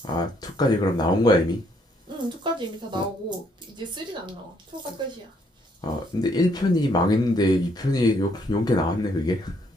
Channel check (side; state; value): both; normal; correlation 0.69